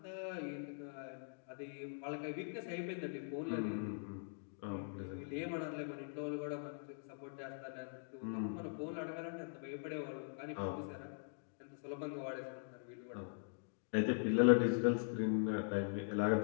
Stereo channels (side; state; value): right; silent; digital silence